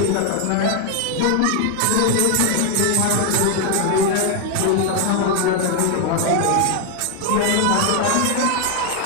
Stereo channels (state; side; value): different; both; correlation 0.01